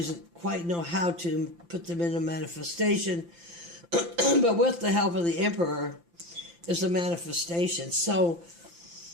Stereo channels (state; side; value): late; left; 5.8 ms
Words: quite know how to put them into manifestation. But with the help of the Emperor is a manifestation. So